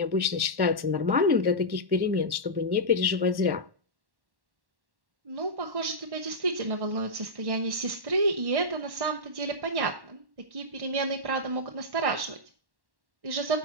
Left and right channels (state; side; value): late; left; 1.1 ms